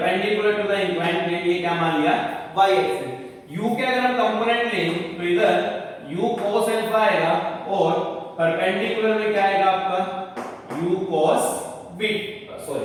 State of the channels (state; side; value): identical; both; correlation 1.00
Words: to the inclined plane ये क्या मान लिया y एक्सिस। u के अगर हम कंपोनेंट लें तो इधर u cos अल्फा आएगा और परपेंडिकुलर में क्या आएगा आपका u cos